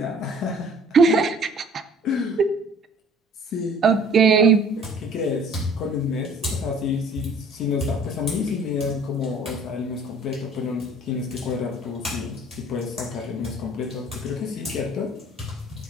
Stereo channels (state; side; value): normal; both; correlation 0.52